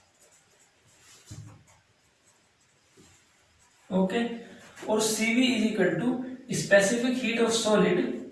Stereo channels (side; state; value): both; identical; correlation 1.00